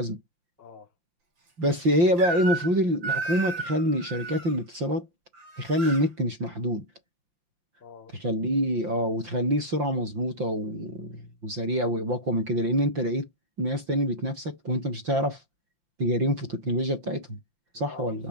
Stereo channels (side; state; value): left; late; 5.8 ms